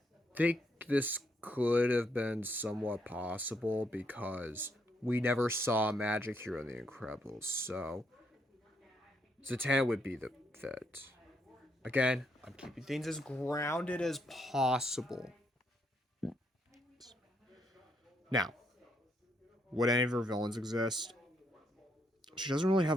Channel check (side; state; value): both; normal; correlation 0.75